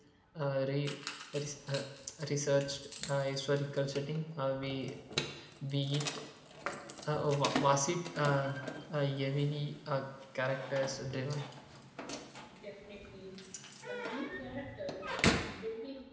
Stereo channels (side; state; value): both; identical; correlation 1.00